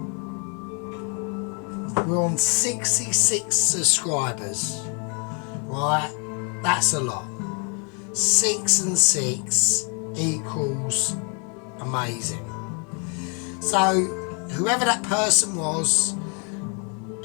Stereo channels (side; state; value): right; quieter; 37.8 dB